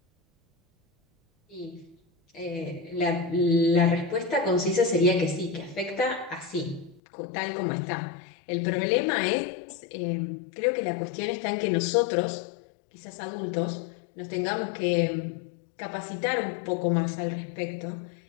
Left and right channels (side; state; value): right; drops out; at 7.0 s